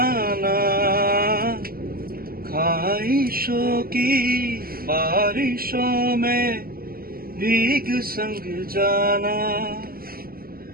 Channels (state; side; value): late; left; 0.43 ms